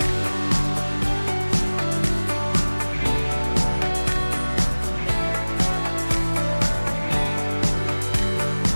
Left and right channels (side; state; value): both; inverted; correlation -1.00